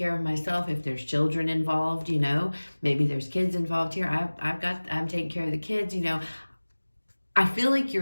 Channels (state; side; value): inverted; both; correlation -1.00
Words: of myself. If there's children involved, maybe there's kids involved here. I'm taking care of the kids, I feel like